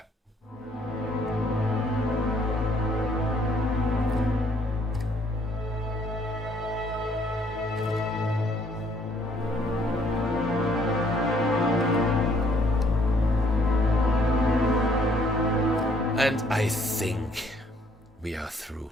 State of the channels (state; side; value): normal; both; correlation 0.65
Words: And I think we are